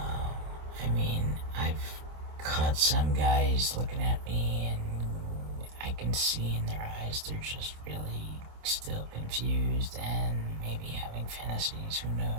I've caught some guys looking at me, and I can see in their eyes they're just really still confused and maybe having fantasies. Who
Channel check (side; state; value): left; late; 26 ms